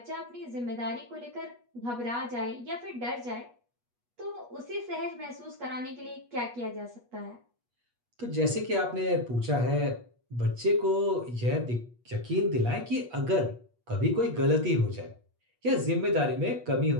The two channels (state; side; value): late; left; 8.3 ms